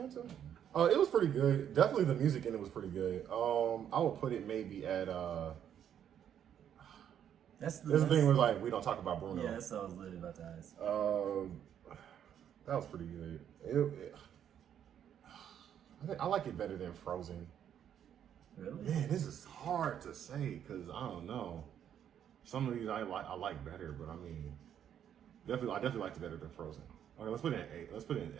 It was pretty good. Definitely the music in it was pretty good. I would put it maybe at That's the thing where like we don't talk about Bruno. Yeah, that's what I was literally about to ask. That was pretty good. I like it better than Frozen. Really? Man, this is hard to say because I don't know. Some of these I like better, but I mean, I definitely liked it better than Frozen. Okay, let's put it in A. Let's put it in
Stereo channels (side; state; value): left; quieter; 9.5 dB